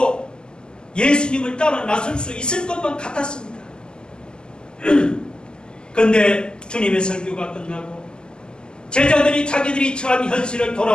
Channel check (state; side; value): late; right; 0.047 ms